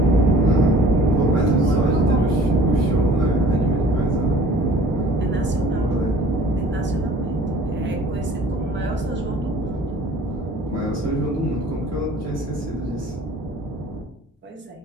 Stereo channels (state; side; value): normal; both; correlation 0.50